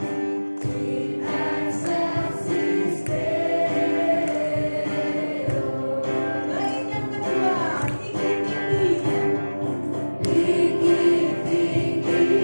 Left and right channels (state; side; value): inverted; both; correlation -1.00